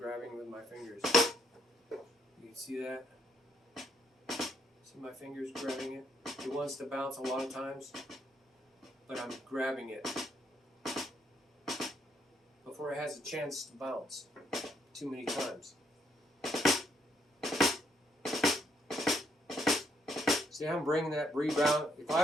with my fingers. You can see that? See my fingers grabbing it? It wants to bounce a lot of times, but I'm grabbing it before it has a chance to bounce too many times. See, I'm bringing that rebound. If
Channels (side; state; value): both; normal; correlation 0.72